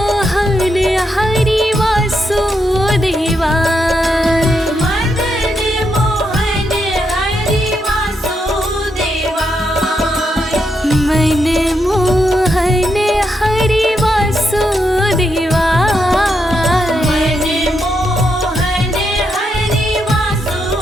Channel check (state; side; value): normal; both; correlation 0.81